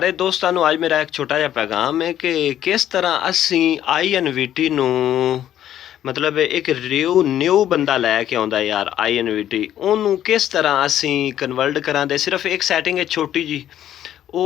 दोस्तों ਨੂੰ ਅੱਜ ਮੇਰਾ ਇੱਕ ਛੋਟਾ ਜਿਹਾ ਪੈਗਾਮ ਹੈ ਕਿ ਕਿਸ ਤਰ੍ਹਾਂ ਅਸੀਂ ਆਈਐਨਵੀਟੀ ਨੂੰ ਮਤਲਬ ਇੱਕ ਨਿਊ ਬੰਦਾ ਲੈ ਕੇ ਆਉਂਦਾ ਯਾਰ ਆਈਐਨਵੀਟੀ, ਉਹਨੂੰ ਕਿਸ ਤਰ੍ਹਾਂ ਅਸੀਂ ਕਨਵਰਟ ਕਰਾਂਦੇ। ਸਿਰਫ ਇੱਕ ਸੈਟਿੰਗ ਹੈ ਛੋਟੀ ਜੀ,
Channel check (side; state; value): right; quieter; 11.4 dB